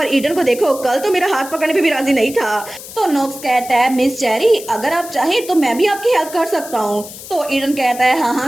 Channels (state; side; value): noise; left; hiss, 14 dB below the sound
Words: ईडन को देखो कल तो मेरा हाथ पकड़ने पे भी राजी नहीं था। तो नोक्स कहता है मिस चेरी अगर आप चाहें तो मैं भी आपकी हेल्प कर सकता हूँ। तो ईडन कहता है